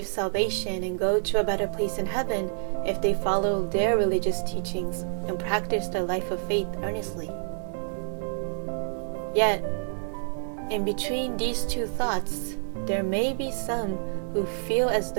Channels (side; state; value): left; silent; 60 dB below the other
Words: salvation and go to a better place in heaven if they follow their religious teachings and practice their life of faith earnestly. Yet, in between these two thoughts, there may be some who feel as